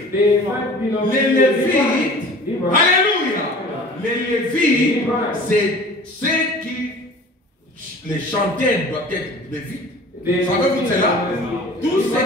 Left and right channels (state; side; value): normal; both; correlation 0.43